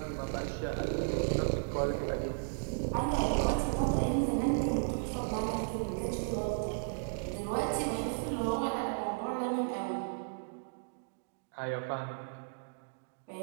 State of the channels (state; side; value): silent; left; digital silence